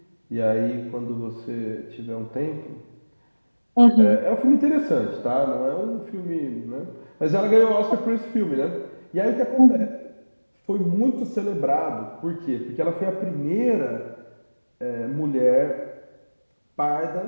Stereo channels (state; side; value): inverted; both; correlation -1.00